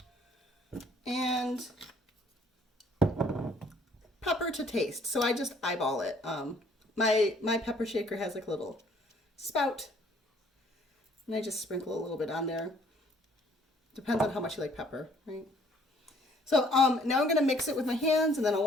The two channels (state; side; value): normal; both; correlation 0.60